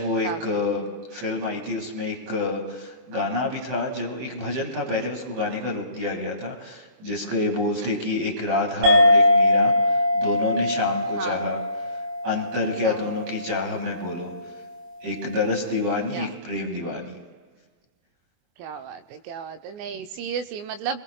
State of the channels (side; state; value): left; late; 24 ms